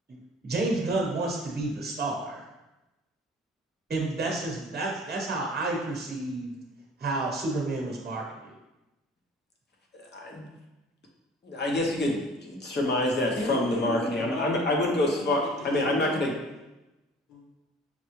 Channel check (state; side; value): normal; both; correlation 0.47